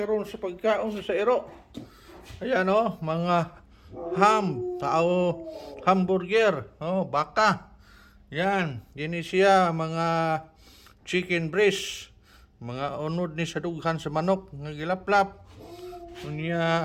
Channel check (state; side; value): identical; both; correlation 1.00